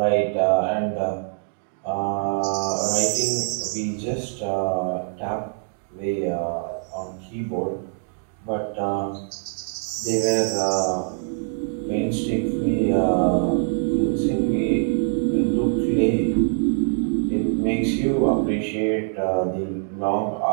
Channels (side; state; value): left; silent; 57 dB below the other